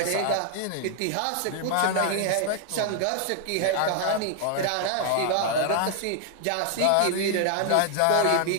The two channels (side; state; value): both; different; correlation 0.00